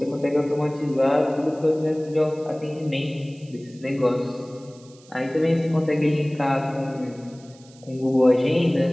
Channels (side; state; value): right; noise; hiss, 26 dB below the sound